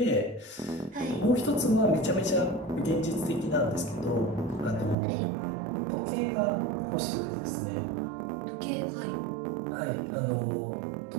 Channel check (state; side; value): drops out; left; at 5.0 s